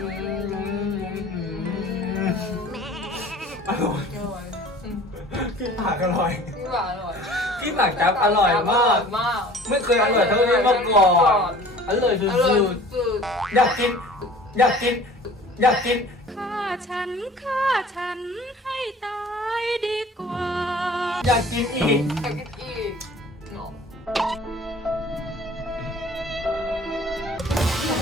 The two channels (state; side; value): normal; both; correlation 0.47